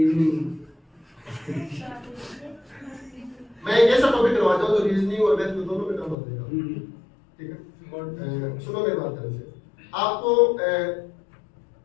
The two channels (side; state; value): right; drops out; at 6.2 s